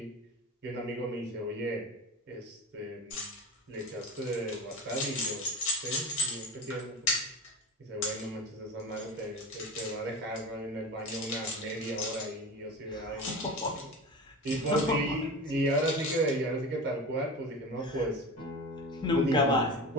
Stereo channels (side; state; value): both; normal; correlation 0.29